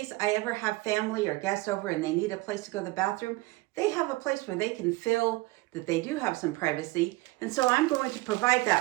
I ever have family or guests over and they need a place to go to the bathroom, they have a place where they can feel that they do have some privacy. And so I'm going to provide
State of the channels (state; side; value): quieter; left; 21.3 dB